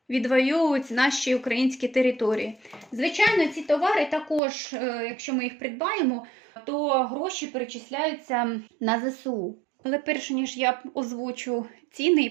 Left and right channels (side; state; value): left; drops out; at 4.4 s